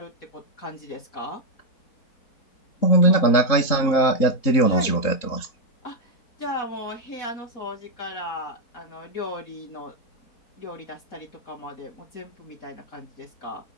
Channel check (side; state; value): right; late; 3.8 ms